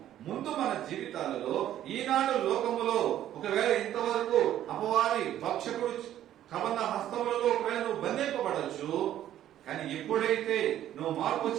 ముందు మన జీవితాలలో ఈనాడు లోకములో ఒకవేళ ఇంతవరకు అపవాది భక్షకుడు కబంధ హస్తములలో ఒకవేళ నువ్వు బంధింపబడచ్చు. కానీ ఎప్పుడైతే నువ్వు మార్పు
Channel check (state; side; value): quieter; left; 11.9 dB